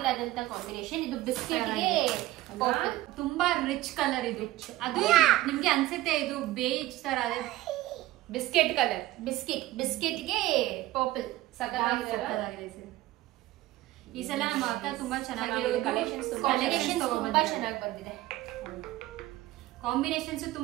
ಆದಂತ ಕಾಂಬಿನೇಷನ್. ಇದು ಬಿಸ್ಕೆಟ್ ಗೆ ತುಂಬಾ ರಿಚ್ ಕಲರ್. ಇದು ಅದು ನಿಮ್ಗೆ ಅನ್ಸುತ್ತೆ ಇದು ಬೇಜ್ ತರ ಅದೇ ಬಿಸ್ಕೆಟ್ ಕಲರ್. ಬಿಸ್ಕೆಟ್ ಗೆ ಪರ್ಪಲ್ ಸಕ್ಕತ್ತಾಗಿದೆ. ಈ ಸಲ ನಮ್ಮ ಅಕ್ಕ ತುಂಬಾ ಚೆನ್ನಾಗಿರೋದು ಕಲೆಕ್ಷನ್ಸ್ ತುಂಬಾ ಚೆನ್ನಾಗಿ ಬಂದಿದೆ. ಕಾಂಬಿನೇಷನ್ಸ್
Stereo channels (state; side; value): quieter; left; 16.6 dB